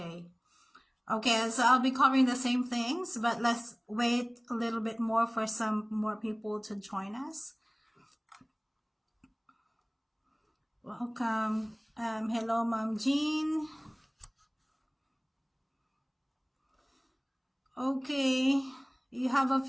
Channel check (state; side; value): identical; both; correlation 1.00